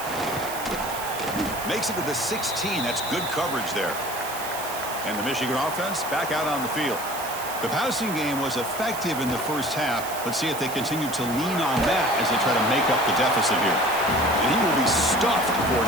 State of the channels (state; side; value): noise; right; hiss, 10 dB below the sound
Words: Makes it to the 16. That's good coverage there. And the Michigan offense back out on the field. The passing game was effective in the first half. Let's see if they continue to lean on that as they try to make up the deficit here. And he will be stuffed for